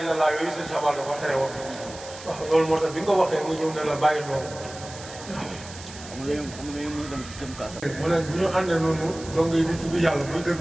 yooyu sëñ Sabal dafa tere woon. waaw loolu moo tax bi nga waxee mu ñëw ne la bàyyi loolu. xam nga ñu dem kaasa. mu ne bu ñu àndee noonu donc yi di tudd yàlla buy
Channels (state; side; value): noise; right; hiss, 15 dB below the sound